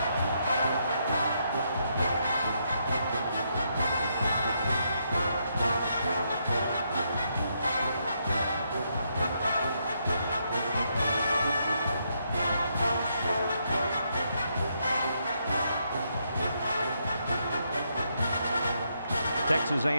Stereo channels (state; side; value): inverted; both; correlation -0.77